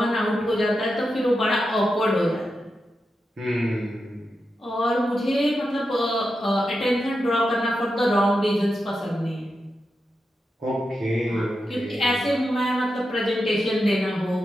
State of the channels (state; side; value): normal; both; correlation 0.88